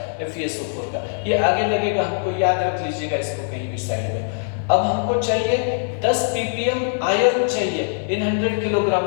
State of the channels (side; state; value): right; silent; 64 dB below the other